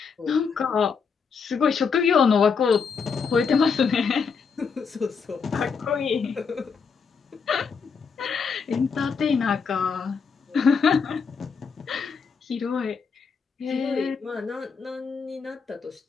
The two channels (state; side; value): quieter; right; 5.7 dB